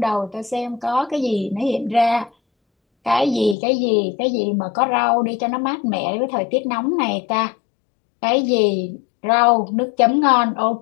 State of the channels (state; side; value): drops out; right; at 3.6 s